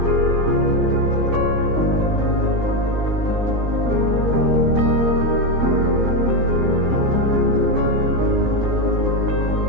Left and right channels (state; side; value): late; left; 17 ms